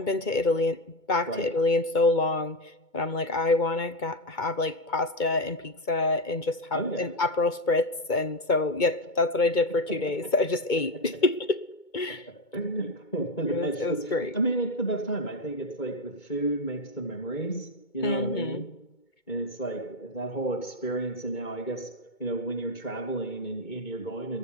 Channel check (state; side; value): late; right; 2.2 ms